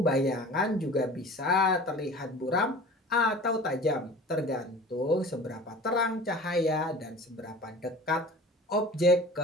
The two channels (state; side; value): normal; both; correlation 0.40